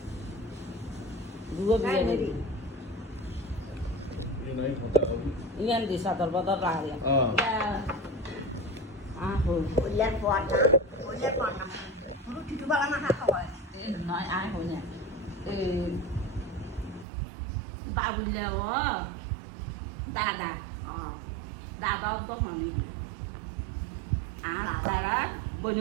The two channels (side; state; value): left; drops out; at 17.1 s